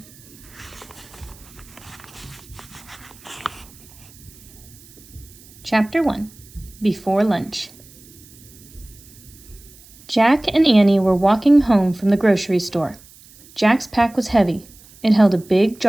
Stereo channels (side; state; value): right; noise; hiss, 23 dB below the sound